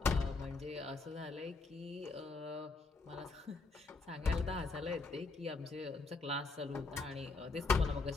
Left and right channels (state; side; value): quieter; right; 3.8 dB